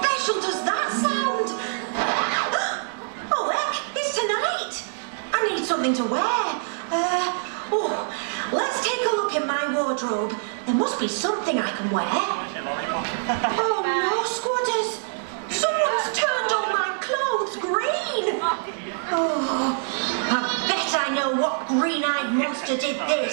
does that sound? Oh, heck, it's tonight! I need something to wear. Let's take a look in my wardrobe. There must be something I can wear. Oh no, squatters! Someone's turned all my clothes green! Oh, I bet I know what green-eyed monster did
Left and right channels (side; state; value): left; silent; digital silence